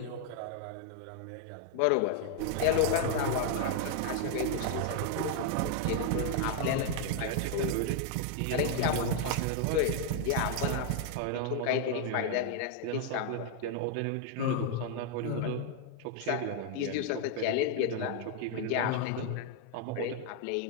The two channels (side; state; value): both; different; correlation 0.00